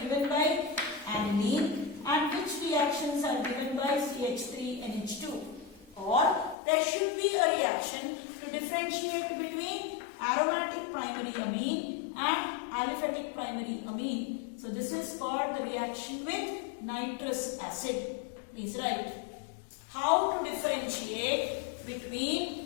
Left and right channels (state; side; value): drops out; right; at 6.6 s